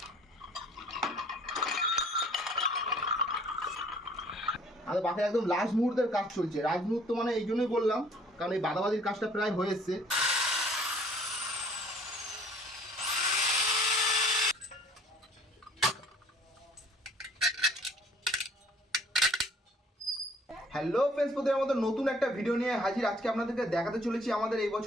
আমাদের বাকি একদম লাস্ট মুহূর্তের কাজ চলছে। লাস্ট মুহূর্ত মানে এই জন্যই বললাম, কারণ এই বাদাবাদির কাজটা প্রায় হয়ে এসছে। হ্যালো ফ্রেন্ডস, প্রথমে আমাদের নতুন একটা ভিডিও নিয়ে হাজির। আজকে আপনাদেরকে দেখাতে চলেছি আমাদের এই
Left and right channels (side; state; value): both; normal; correlation 0.56